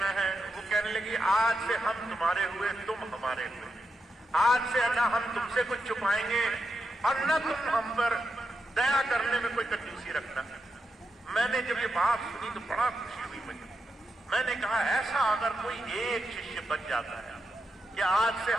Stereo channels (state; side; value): normal; both; correlation 0.86